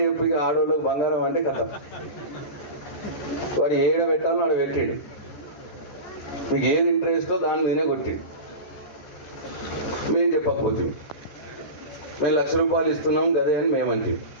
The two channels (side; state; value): right; late; 13 ms